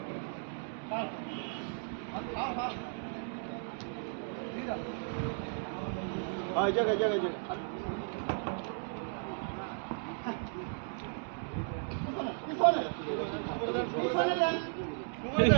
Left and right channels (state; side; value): silent; left; 54 dB below the other